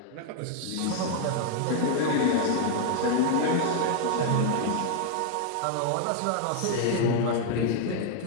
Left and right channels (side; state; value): both; different; correlation 0.00